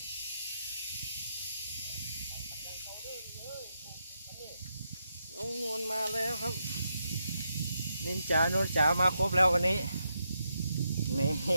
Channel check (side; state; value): both; inverted; correlation -0.83